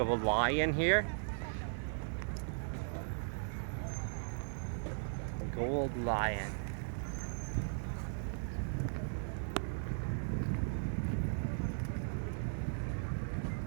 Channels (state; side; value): silent; left; digital silence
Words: of a lion here. Gold lion.